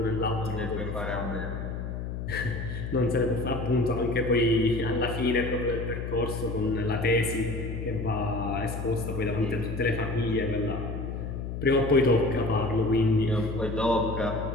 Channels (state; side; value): noise; left; hum, 5 dB below the sound